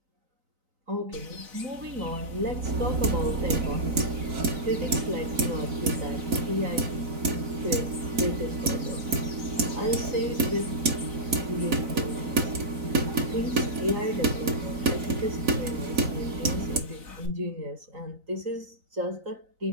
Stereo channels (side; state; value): left; late; 4.0 ms